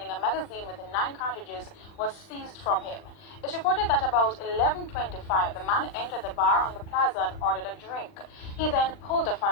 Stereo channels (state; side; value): late; right; 39 ms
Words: a magazine with 9 cartridges was seized from him. It's reported that about 11:25, the man entered the bar on the plaza and ordered a drink. He then pulled the